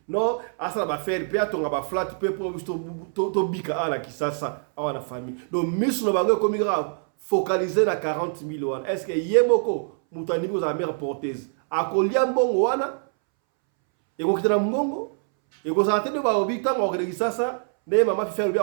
non asa ba faire pe atonga ba flat pe pour to bika ala ki sasa awana famille donc misu no bango comme grave focaliser na 40 000 wana est-ce que yemoko mutani ko za mère porteuse akolia mbongo wana eko kitana mbongo eko sa tende ba obi tanga ko ki sasa ne mama fi faire bi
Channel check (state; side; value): silent; left; 62 dB below the other